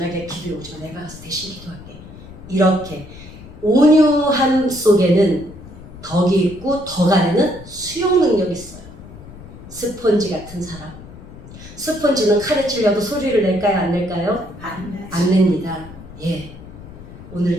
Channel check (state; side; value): noise; left; rumble, 16 dB below the sound